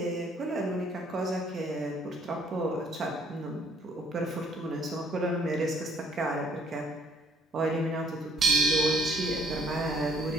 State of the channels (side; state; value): both; normal; correlation 0.61